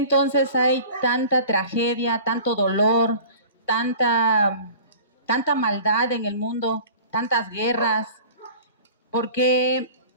hay tanta tragedia, tanto dolor, tanta maldad en el mundo, tantas guerras? ¿Por qué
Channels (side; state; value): both; inverted; correlation -0.42